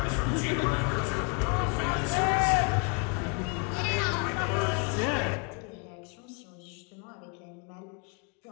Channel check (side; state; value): right; quieter; 35.5 dB